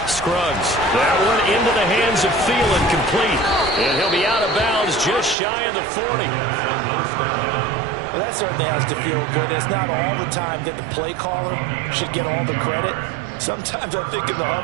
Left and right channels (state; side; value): drops out; left; at 5.4 s